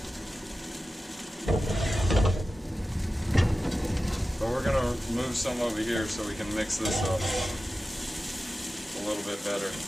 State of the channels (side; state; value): both; normal; correlation 0.94